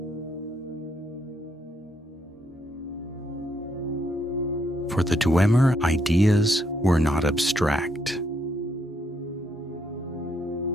For the Dwemer, ideas were not abstract.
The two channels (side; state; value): both; normal; correlation 0.75